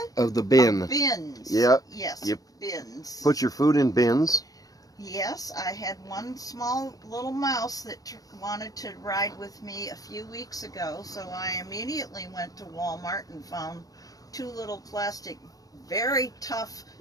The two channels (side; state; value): right; late; 0.18 ms